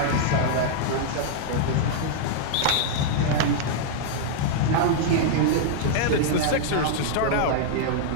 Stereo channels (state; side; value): different; both; correlation -0.01